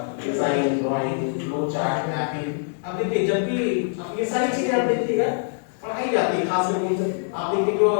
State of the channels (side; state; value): right; silent; digital silence